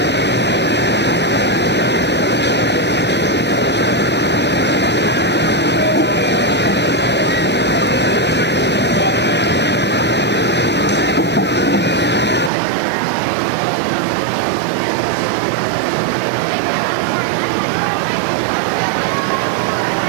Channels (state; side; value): drops out; left; at 12.5 s